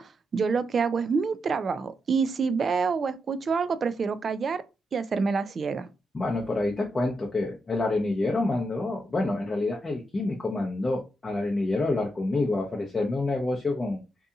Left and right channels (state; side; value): normal; both; correlation 0.84